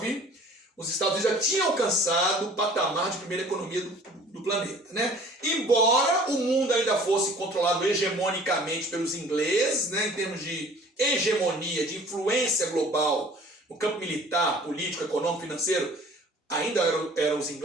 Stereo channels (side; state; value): both; normal; correlation 0.50